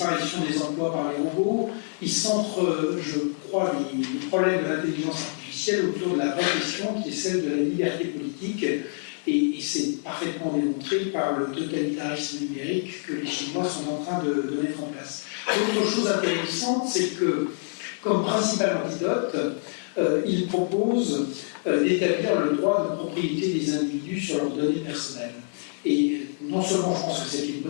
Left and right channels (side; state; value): right; silent; 61 dB below the other